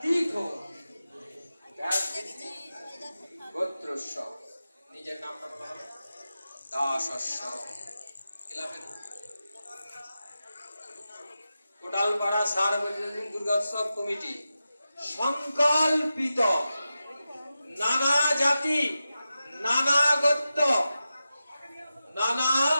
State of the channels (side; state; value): both; inverted; correlation -0.92